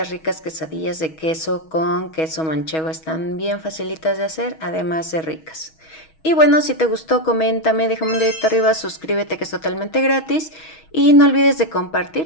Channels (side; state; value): right; late; 6.3 ms